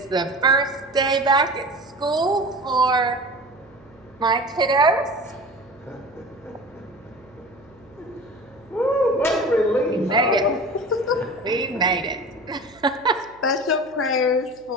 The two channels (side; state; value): right; noise; hum, 28 dB below the sound